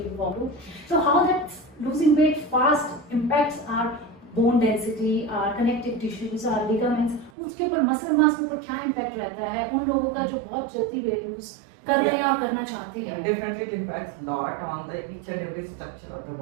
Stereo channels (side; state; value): left; drops out; at 7.3 s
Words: forward to. So how that losing weight fast impacts our bone density, our connective tissues, our ligaments, उसके ऊपर muscle mass के ऊपर क्या impact रहता है उन लोगों का जो बहुत जल्दी weight lose कर रहे हैं और करना चाहते हैं? Definitely it impacts a lot on the each and every structure of the